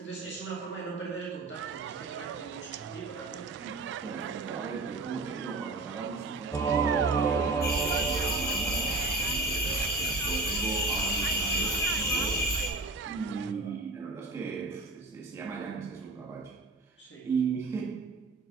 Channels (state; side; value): quieter; left; 3.1 dB